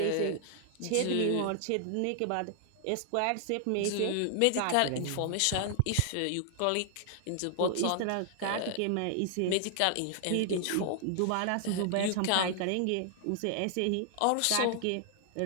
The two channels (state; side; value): different; both; correlation 0.00